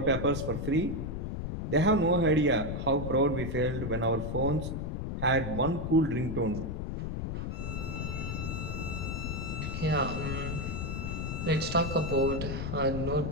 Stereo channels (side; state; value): left; noise; rumble, 3 dB below the sound